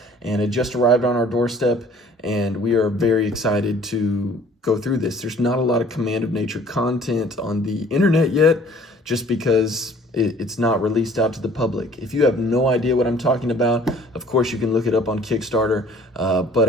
and it just arrived on our doorstep. And we are very excited to go through this. There's not a lot of Command of Nature content on the internet yet, just because it's not released out to the public. If you have no idea what I'm talking about, of course you can look it up on Kickstarter, but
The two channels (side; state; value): both; normal; correlation 0.53